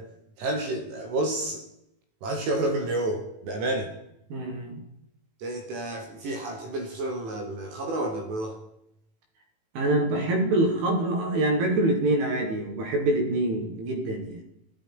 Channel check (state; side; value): late; left; 18 ms